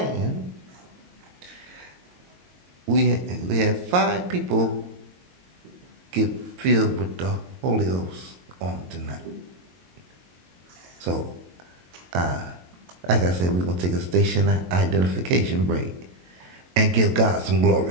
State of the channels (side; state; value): left; late; 22 ms